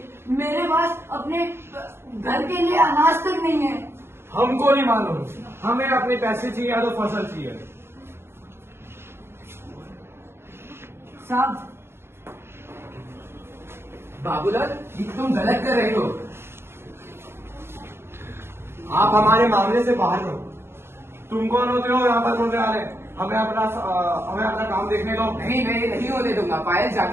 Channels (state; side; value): late; left; 0.12 ms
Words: मेरे पास अपने घर के लिए अनाज तक नहीं है। हमको नहीं मालूम, हमें अपने पैसे चाहिए या तो फसल चाहिए। साहब बाबूलाल, ये तुम गलत कर रहे हो। आप हमारे मामले से बाहर रहो। तुम कौन होते हो यहाँ पर बोलने वाले? हमें अपना काम देखने दो। नहीं, मैं नहीं होने दूंगा। पायल